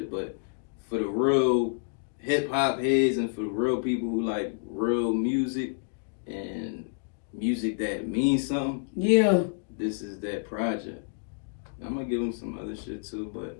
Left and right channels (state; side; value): silent; right; digital silence